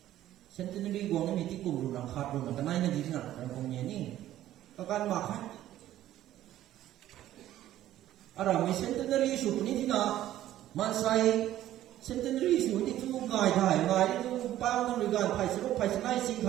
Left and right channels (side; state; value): left; quieter; 13.2 dB